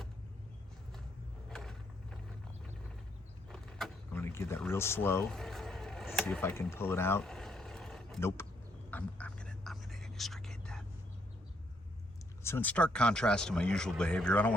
I'm gonna get that real slow. See if I can pull it out. Nope. I'm gonna extricate that. So in stark contrast to my usual behavior, I don't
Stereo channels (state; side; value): normal; both; correlation 0.73